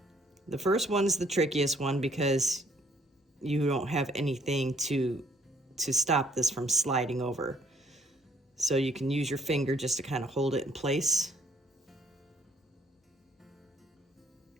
The first one's the trickiest one because you don't have anything to stop this from sliding over. So you can use your finger just to kind of hold it in place.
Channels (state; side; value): normal; both; correlation 0.64